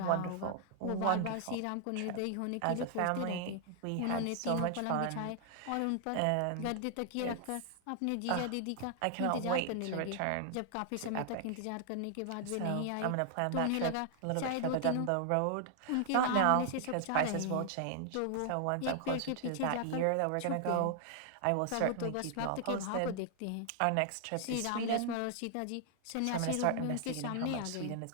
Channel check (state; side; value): different; both; correlation 0.00